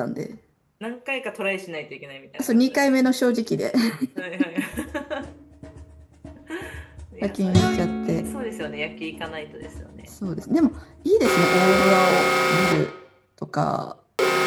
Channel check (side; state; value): both; identical; correlation 1.00